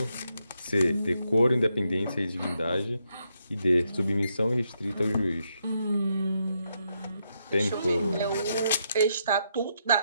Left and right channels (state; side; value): inverted; both; correlation -0.79